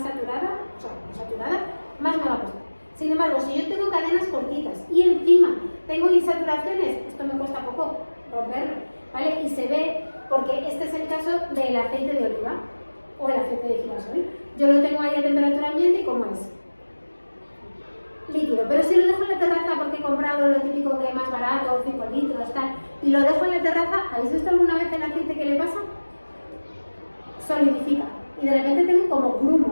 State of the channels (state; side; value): inverted; both; correlation -1.00